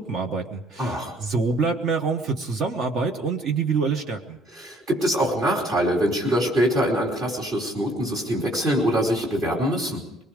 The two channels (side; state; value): both; normal; correlation 0.60